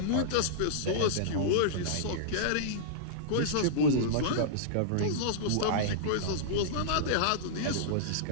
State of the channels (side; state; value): both; different; correlation -0.02